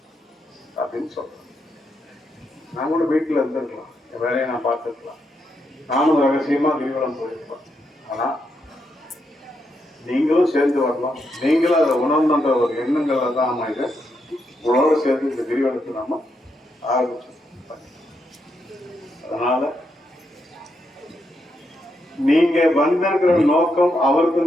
அப்படின்னு சொல்றேன். நான் கூட வீட்டுல இருந்திருக்கலாம், என் வேலையை நான் பார்த்துருக்கலாம், நானும் ரகசியமா கிரிவலம் போயிருப்பேன். ஆனா நீங்களும் சேர்ந்து வரலாம், நீங்களும் அதை உணர்ந்த ஒரு எண்ணங்கள் தான் நம்ம இதை உங்களோட சேர்ந்து இந்த கிரிவலத்தை நாம ஆரம்பிச்சோம். அதனால நீங்க வந்திருக்கிற நோக்கம்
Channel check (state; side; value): normal; both; correlation 0.81